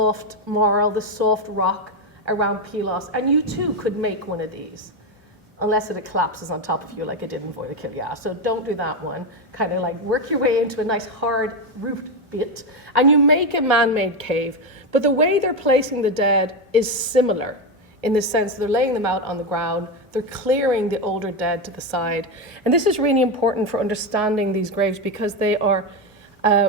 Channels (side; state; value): both; normal; correlation 0.10